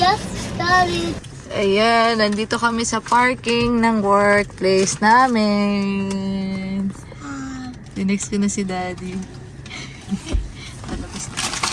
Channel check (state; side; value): identical; both; correlation 1.00